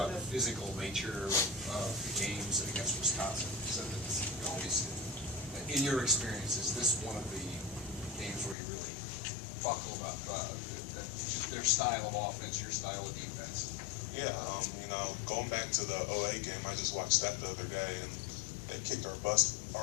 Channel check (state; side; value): drops out; right; at 8.6 s